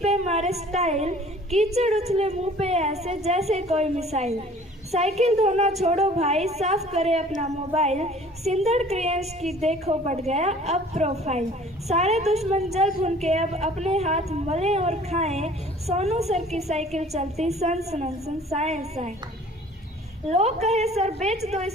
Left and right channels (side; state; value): both; normal; correlation 0.50